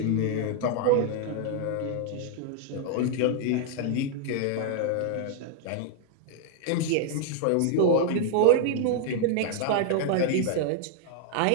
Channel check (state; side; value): different; both; correlation 0.00